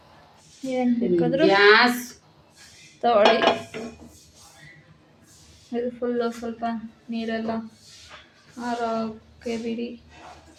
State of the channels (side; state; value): both; identical; correlation 1.00